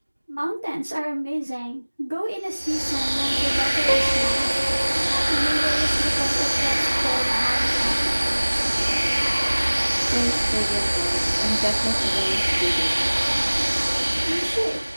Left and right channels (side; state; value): both; inverted; correlation -1.00